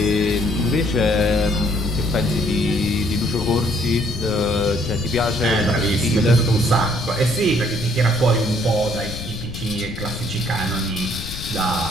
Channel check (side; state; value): left; noise; rumble, 9 dB below the sound